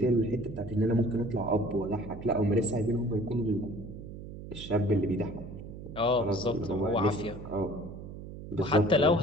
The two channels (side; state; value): right; noise; hum, 12 dB below the sound